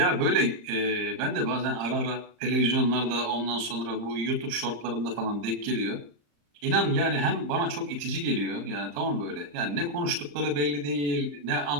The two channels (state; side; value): late; left; 34 ms